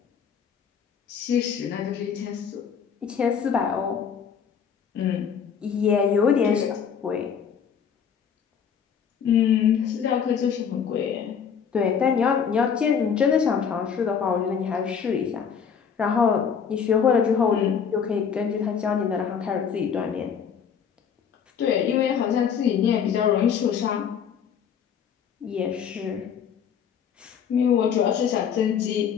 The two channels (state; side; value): quieter; right; 7.3 dB